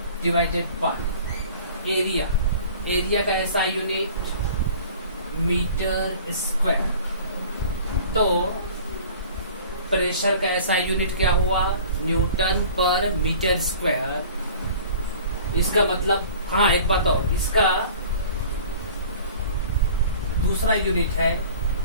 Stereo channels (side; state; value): both; inverted; correlation -0.45